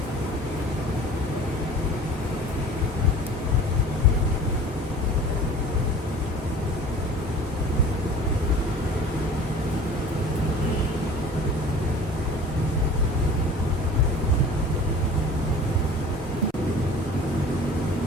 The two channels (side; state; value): both; normal; correlation 0.43